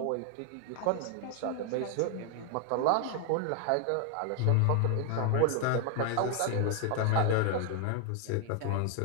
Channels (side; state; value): both; different; correlation 0.00